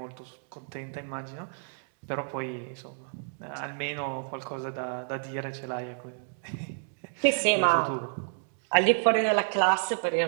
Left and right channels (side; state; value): left; silent; digital silence